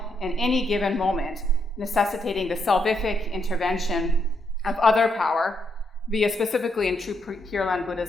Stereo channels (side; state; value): both; normal; correlation 0.78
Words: in any given moment, necessitating the salvific intervention of other power via, specifically in true Pure Land